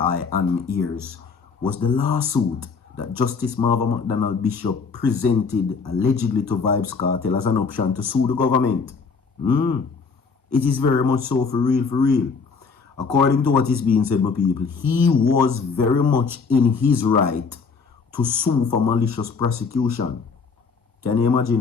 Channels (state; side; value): quieter; right; 5.0 dB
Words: and my ears was the lawsuit that Justice Marva McDonald Bishop presented allegedly to Vybz Kartel as an option to sue the government. It is very much so, for real, for real. According to what is being said, my people, he was very much in his right to sue for malicious prosecution. Can you